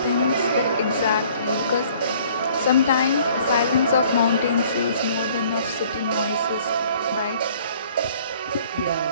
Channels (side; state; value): both; inverted; correlation -0.56